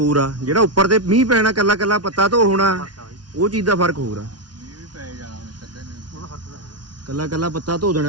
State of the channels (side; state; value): left; late; 0.69 ms